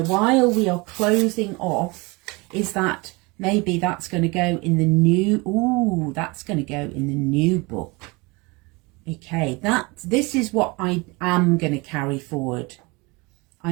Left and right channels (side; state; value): left; quieter; 26.1 dB